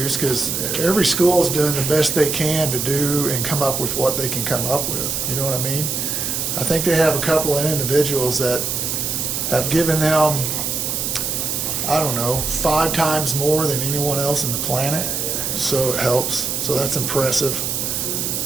because every school is doing the best they can to do and come up with what they can come up with. You know what I mean? I think they have a couple of individuals that have given them, I don't know, 5 times more than anyone else in the planet. So it helps. So that's impressive.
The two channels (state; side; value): noise; right; hiss, 1 dB below the sound